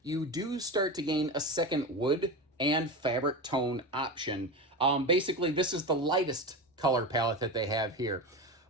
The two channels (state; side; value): normal; both; correlation 0.23